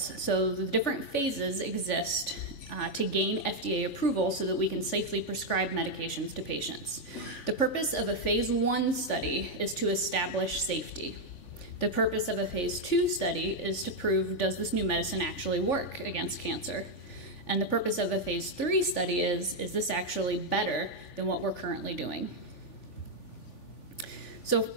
So the different phases exist to gain FDA approval so that we can safely prescribe medications to patients. The purpose of a phase 1 study is to establish safety. The purpose of a phase 2 study is to prove, does this new medicine actually work against cancer? And the purpose of a phase 3 study is this actually better than what we're currently doing? So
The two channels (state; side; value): late; right; 3.5 ms